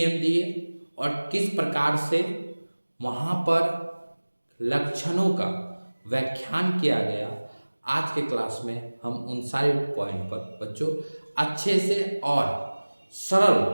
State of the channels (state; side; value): inverted; both; correlation -1.00